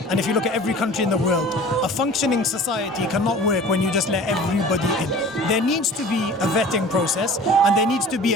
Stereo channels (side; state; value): both; normal; correlation 0.43